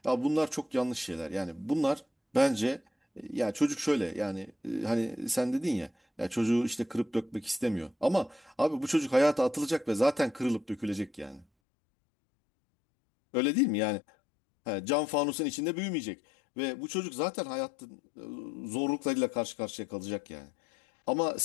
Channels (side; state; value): right; drops out; at 11.5 s